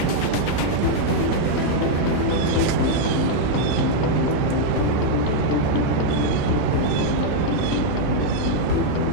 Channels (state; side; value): different; both; correlation 0.00